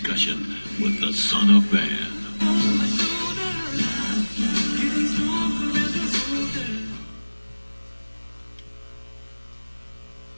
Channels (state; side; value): inverted; both; correlation -1.00